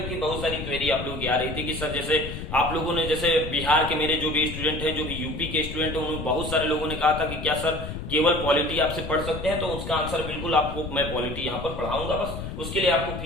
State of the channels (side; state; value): left; noise; rumble, 7 dB below the sound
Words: बहुत सारी क्वेरी आप लोगों की आ रही थी कि सर, जैसे आप लोगों ने, जैसे बिहार के मेरे जो भी स्टूडेंट हैं, जो भी यूपी के स्टूडेंट हैं, उन्होंने बहुत सारे लोगों ने कहा था कि क्या सर केवल पॉलिटी आपसे पढ़ सकते हैं। तो उसका आंसर बिल्कुल आपको, मैं पॉलिटी यहाँ पर पढ़ाऊंगा, बस उसके लिए आपको